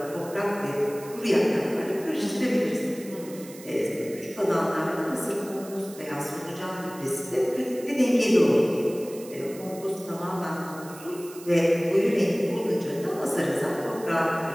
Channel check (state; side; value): noise; right; hiss, 18 dB below the sound